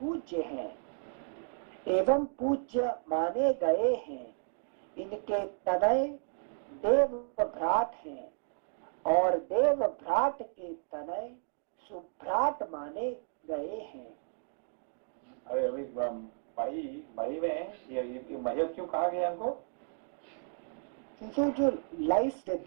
हैं, एवं पूज्य माने गए हैं। इनके तनय देव भ्राट हैं और देव भ्राट के तनय सुभ्राट माने गए हैं। अभी मही में ये मह्य क्यों कहा गया इनको? जो लाइफ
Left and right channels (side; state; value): left; silent; digital silence